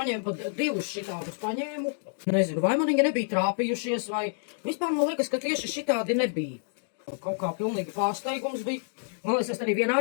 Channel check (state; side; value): silent; right; digital silence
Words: pat 2 šitādus paņēmu. Nezinu, vai man viņi nebija trāpījušies, vai... Vispār man liekas, ka tieši šitādi nebija. Kaut kā pilnīgi pārsteigums bija. Man liekas, es arī vienā